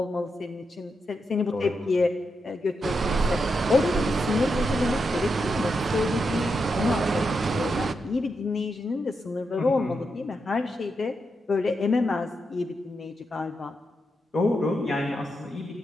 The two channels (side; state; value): both; normal; correlation 0.85